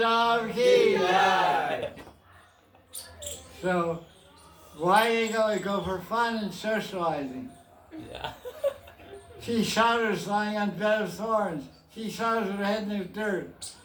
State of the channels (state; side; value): identical; both; correlation 1.00